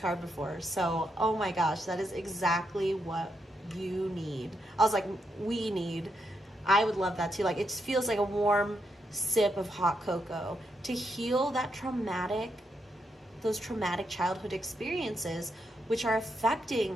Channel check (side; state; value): both; normal; correlation 0.81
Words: before. So, oh my gosh, that is exactly what you need. I was like, we need. I would love that too. Like, it just feels like a warm sip of hot cocoa to heal those traumatic childhood experiences which are